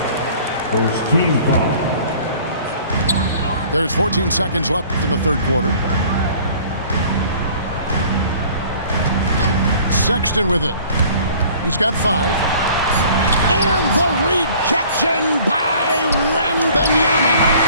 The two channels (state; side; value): inverted; both; correlation -0.51